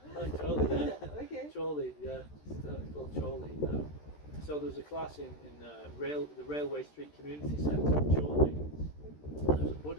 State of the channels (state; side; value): late; right; 13 ms